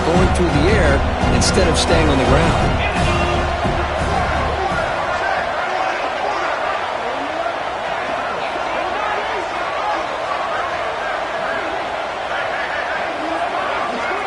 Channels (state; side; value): identical; both; correlation 1.00